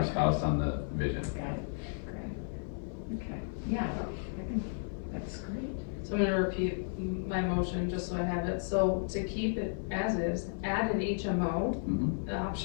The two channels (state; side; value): silent; right; 55 dB below the other